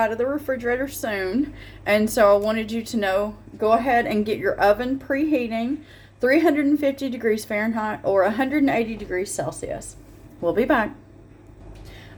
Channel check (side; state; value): both; identical; correlation 1.00